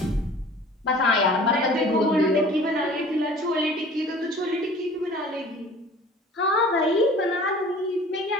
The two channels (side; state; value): both; normal; correlation 0.46